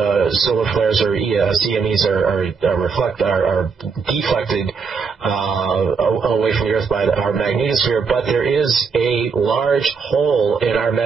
solar flares or CMEs are deflected away from the Earth by our magnetosphere, but there is a large hole in our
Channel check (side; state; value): left; quieter; 5.4 dB